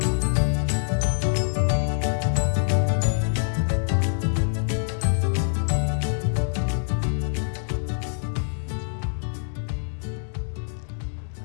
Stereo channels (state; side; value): silent; right; digital silence